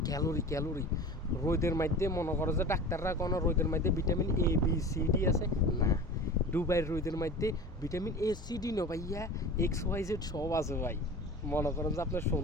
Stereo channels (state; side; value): normal; both; correlation 0.36